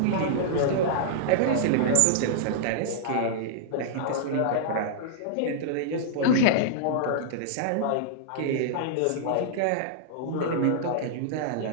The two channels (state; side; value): different; both; correlation -0.02